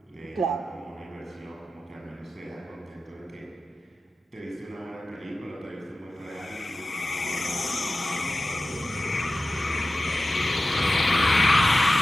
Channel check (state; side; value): normal; both; correlation 0.93